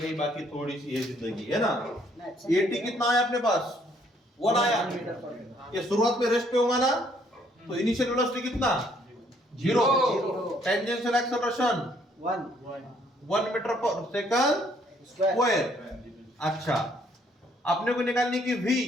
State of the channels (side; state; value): both; normal; correlation 0.66